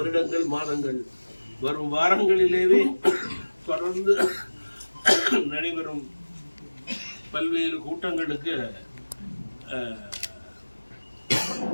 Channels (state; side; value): inverted; both; correlation -1.00